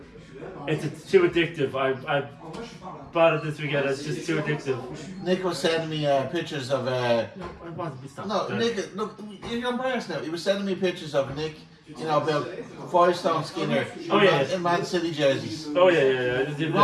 it's too addictive. I bought it this weekend. It's just too addictive. Nick was sending me pictures of. I want to be stopped. No, Nick, look, you're embarrassed now. He was sending me pictures of Nick, you know, about 5-stone Skinner in Man City jerseys. Oh yeah. We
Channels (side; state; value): both; identical; correlation 1.00